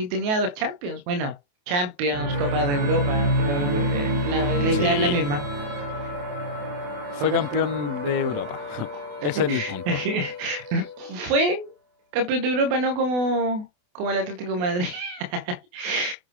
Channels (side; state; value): left; late; 28 ms